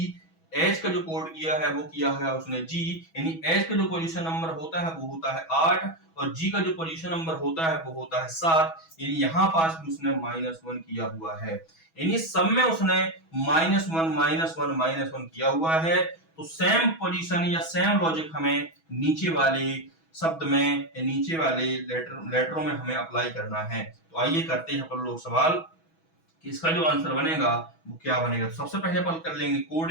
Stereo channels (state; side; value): late; right; 6.2 ms